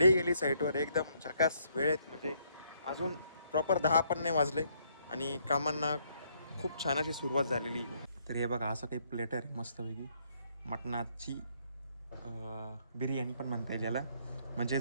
गेली साईटवर. एकदम झकास वेळेत, म्हणजे अजून प्रॉपर 10 पण नाही वाजले आणि कामांना खूप छान अशी सुरुवात झालेली. तर हे बघा, असं काही प्लेटर आहे मस्तपैकी मटणाची बिर्याणी पण म्हणता येईल याला. म्हणजे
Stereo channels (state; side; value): inverted; both; correlation -0.70